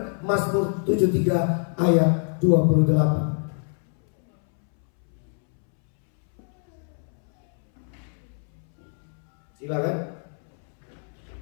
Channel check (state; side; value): silent; right; 62 dB below the other